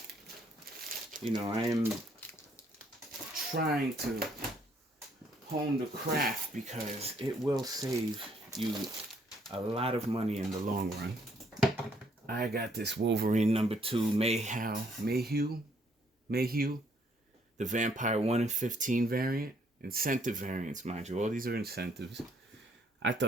you know, I am trying to hone the craft because it will save you a lot of money in the long run. I got this Wolverine #2 Mayhew, the Vampire 1 in 15 variant, incentive variants, mind you. All these are incentives. I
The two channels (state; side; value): normal; both; correlation 0.67